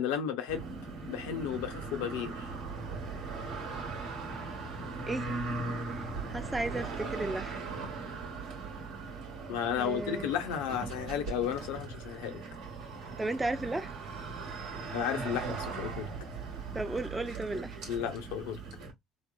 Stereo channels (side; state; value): both; normal; correlation 0.46